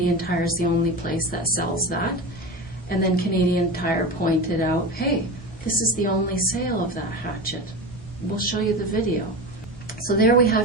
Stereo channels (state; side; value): normal; both; correlation 0.26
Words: Tire is the only place that sells that, and then Canadian Tire pointed out, hey, this is the only sale of that hatchet. We'll show you the video. So there we